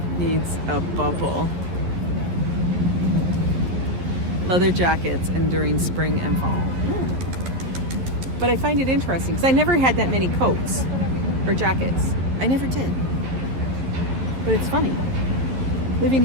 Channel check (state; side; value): late; left; 11 ms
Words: needs a bubble. Leather jackets and during spring and fall. But I find it interesting because I never had that many coats or jackets. I never did. But it's funny. Living